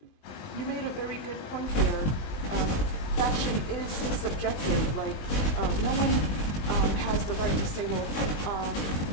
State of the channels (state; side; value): late; right; 20 ms